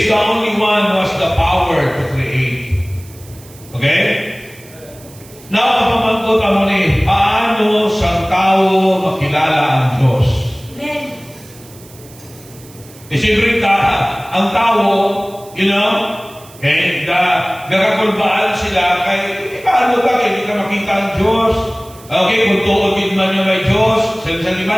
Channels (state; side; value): noise; right; hiss, 22 dB below the sound